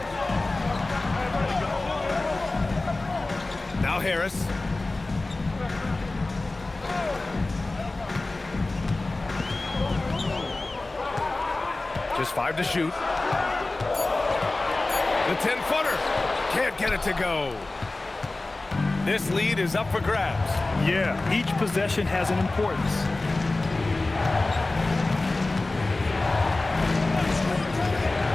Now Harris. Just 5 to shoot. The 10-footer. Can't get it to go. This lead is up for grabs. Yeah, each possession has an importance.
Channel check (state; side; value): quieter; right; 3.1 dB